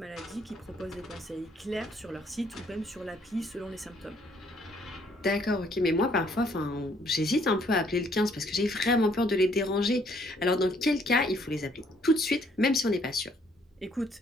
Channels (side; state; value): both; normal; correlation 0.65